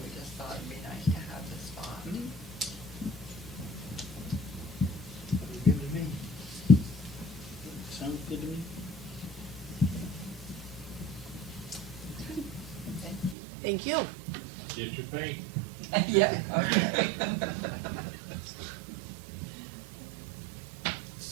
we just thought it'd be nice to have this spot. Sounds good to me. Sounds good to me. Thank you. Thank you. Get your paint. Yeah, okay.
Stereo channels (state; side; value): drops out; left; at 13.4 s